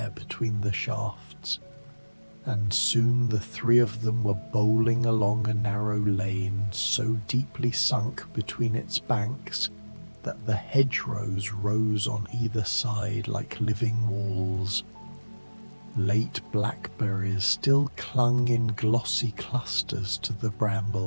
between the shafts, and soon the three of them were bowling along a narrow lane so deeply sunk between its banks that the hedgerows rose on either side like living walls. Late blackberries still clung in glossy clusters to the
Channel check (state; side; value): inverted; both; correlation -1.00